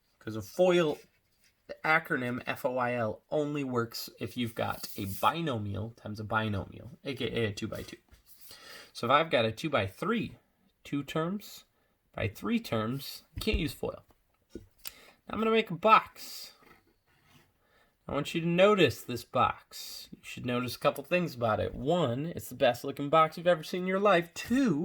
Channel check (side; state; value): both; identical; correlation 1.00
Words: because a FOIL, the acronym FOIL, only works if you've got a binomial times a binomial, aka a 2 by 2. So if I've got a 2 by 3, 2 terms by 3 terms, I can't use FOIL. Now I'm going to make a box. I want you to notice this box. You should notice a couple things about it. 1, it's the best looking box you've ever seen in your life.